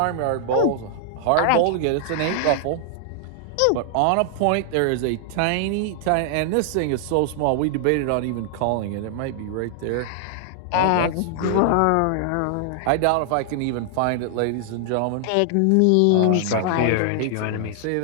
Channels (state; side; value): different; both; correlation 0.00